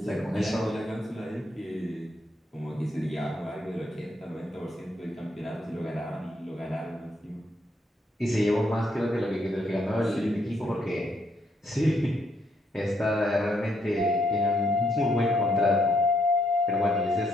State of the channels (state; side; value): normal; both; correlation 0.74